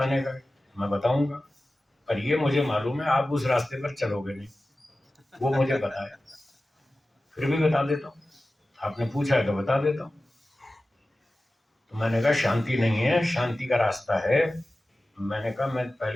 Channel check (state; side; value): normal; both; correlation 0.95